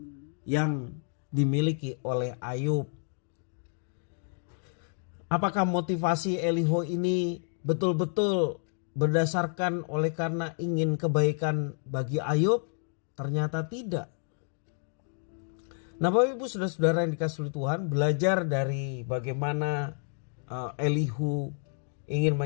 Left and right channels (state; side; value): silent; right; 58 dB below the other